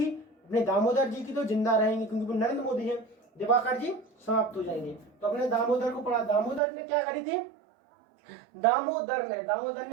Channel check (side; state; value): left; drops out; at 6.6 s